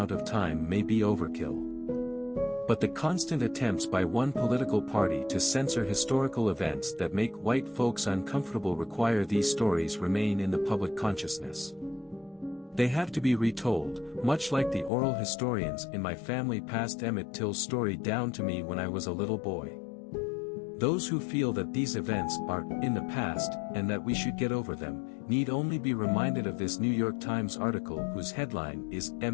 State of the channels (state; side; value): drops out; right; at 14.9 s